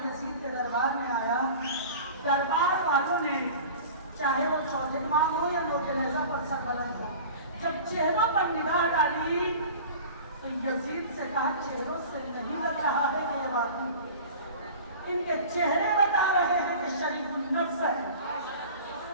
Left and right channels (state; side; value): inverted; both; correlation -0.39